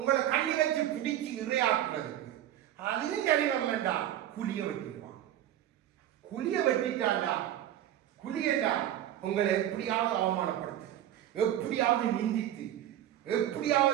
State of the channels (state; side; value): quieter; left; 12.0 dB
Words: கண்ணி வச்சு பிடிச்சு இறையாக்குறதுக்கு. அதுவும் சரி வரலண்டா குழிய வெட்டிடுவான். குழிய வெட்டிட்டாண்டா குழியண்டா உங்களை எப்படியாவது அவமானப்படுத்து, எப்படியாவது நிந்தித்து,